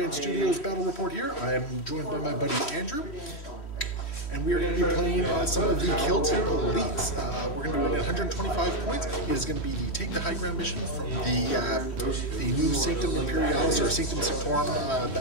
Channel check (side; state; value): right; late; 3.1 ms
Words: Studios battle report here. I am joined by my buddy Andrew, and we are going to be playing some of the Killteam elites. We're going to be running 125 points. It is going to be the Take the High Ground mission from the new Sanctum Imperialis or Sanctum